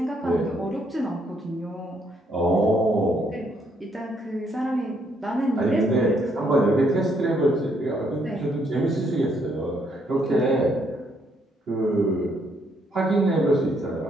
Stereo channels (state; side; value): normal; both; correlation 0.71